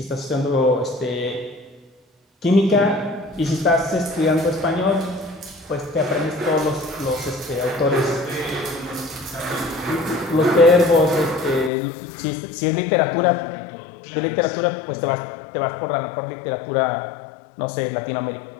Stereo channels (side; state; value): right; drops out; at 11.7 s